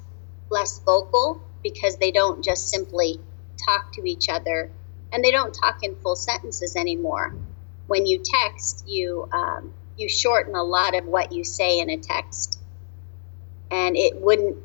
vocal because they don't just simply talk to each other, and they don't talk in full sentences anymore. When you text, you shorten a lot of what you say in a text, and it wouldn't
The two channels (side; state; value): right; silent; digital silence